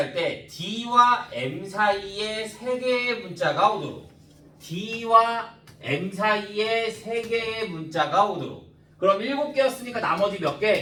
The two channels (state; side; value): identical; both; correlation 1.00